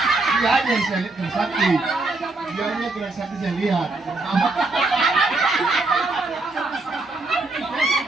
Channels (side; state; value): left; quieter; 3.2 dB